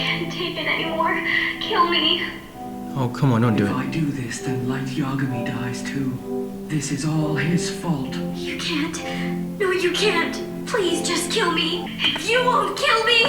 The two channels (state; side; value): identical; both; correlation 1.00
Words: take it anymore. Kill me. Oh, come on, don't do If it. I do this, then Light Yagami dies too. This is all his fault. You can't. No, you can't. Please just kill me. You won't kill